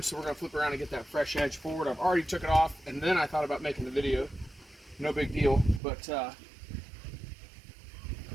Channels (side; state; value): left; drops out; at 5.8 s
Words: so we're going to flip around and get that fresh edge forward. I've already took it off, and then I thought about making the video. No big deal, but go